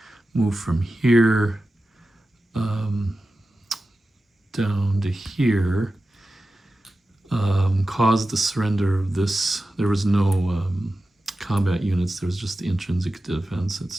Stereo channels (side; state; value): both; normal; correlation 0.93